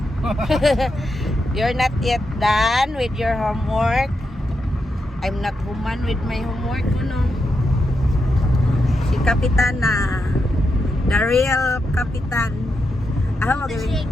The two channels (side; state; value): both; normal; correlation 0.85